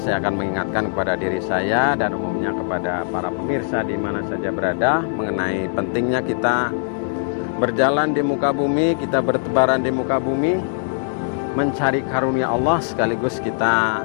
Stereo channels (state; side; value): silent; right; digital silence